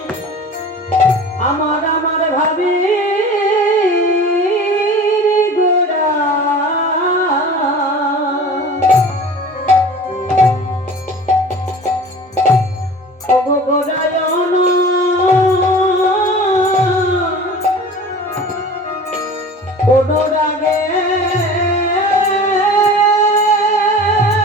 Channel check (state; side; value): normal; both; correlation 0.40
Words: আমার আমার ভাবে গোড়া। ওগো গোড়ায়ন অনুরাগে